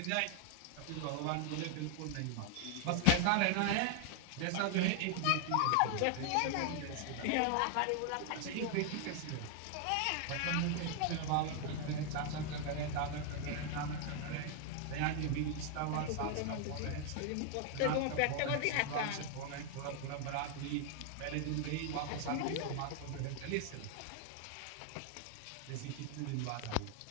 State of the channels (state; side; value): different; both; correlation 0.00